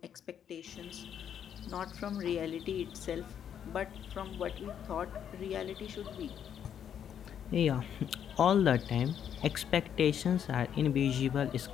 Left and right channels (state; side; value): quieter; right; 8.9 dB